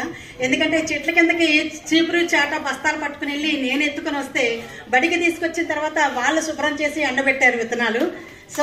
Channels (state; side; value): identical; both; correlation 1.00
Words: ఎందుకంటే చెట్ల కిందకి చీపురు చాట బస్తాలు పట్టుకుని వెళ్ళి నేను ఎత్తుకుని వస్తే బడికి తీసుకొచ్చిన తర్వాత వాళ్ళు శుభ్రం చేసి ఎండబెట్టారు విత్తనాలు.